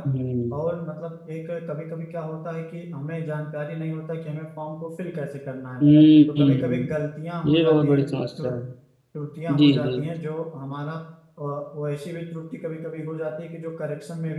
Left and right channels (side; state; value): both; identical; correlation 1.00